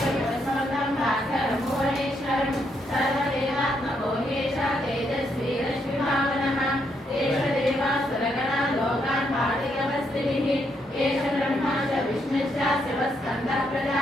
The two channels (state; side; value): normal; both; correlation 0.77